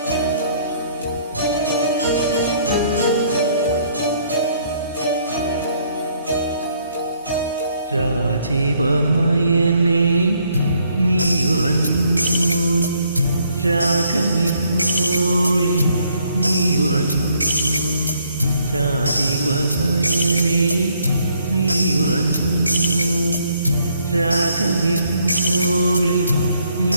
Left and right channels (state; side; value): inverted; both; correlation -0.68